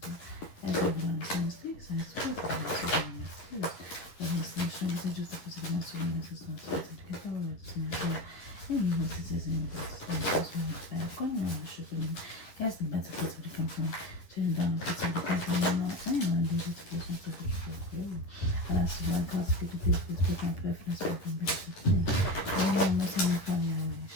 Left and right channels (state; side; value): late; right; 10 ms